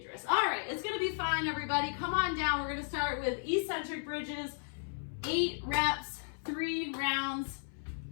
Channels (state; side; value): silent; right; 55 dB below the other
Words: Dris. All right, it's going to be fine, everybody. Come on down. We're going to start with eccentric bridges, 8 reps. 3 rounds.